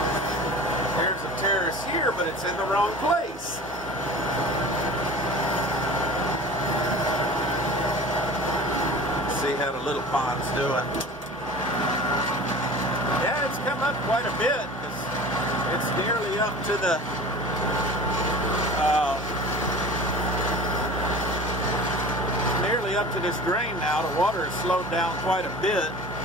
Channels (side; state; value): both; normal; correlation 0.39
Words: there's a terrace here, but it's in the wrong place. See how the little pond's doing. Yeah, it's come up quite a bit because it's nearly up to the this drain now. The water has slowed down quite a bit.